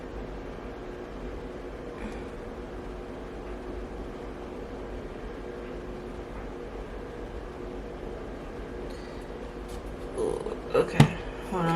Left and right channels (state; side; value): identical; both; correlation 1.00